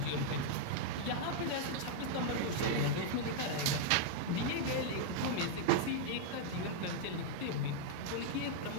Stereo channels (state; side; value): different; both; correlation -0.01